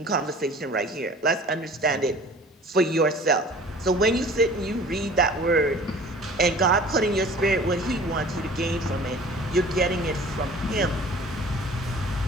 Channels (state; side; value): normal; both; correlation 0.46